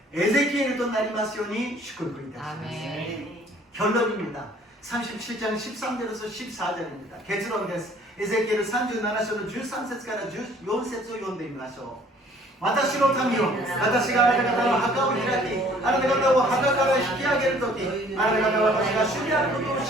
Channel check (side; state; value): both; normal; correlation 0.56